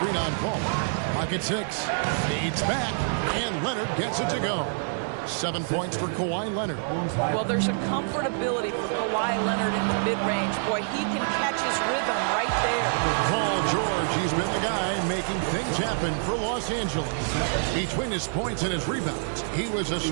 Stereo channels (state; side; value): silent; left; 60 dB below the other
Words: on Paul. Pocket 6. Fades back. And Leonard gets it to go. 7 points for Kawhi Leonard. Well, there's a comfortability for Kawhi Leonard in the mid-range. Boy, he can catch his rhythm right there. Paul George, he's been the guy making things happen for Los Angeles. Between his points and his rebounds, he was a